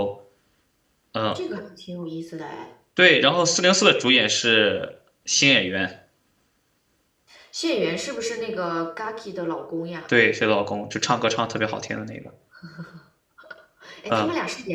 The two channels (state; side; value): identical; both; correlation 1.00